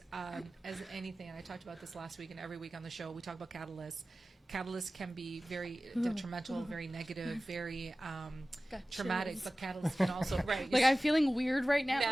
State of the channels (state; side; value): normal; both; correlation 0.96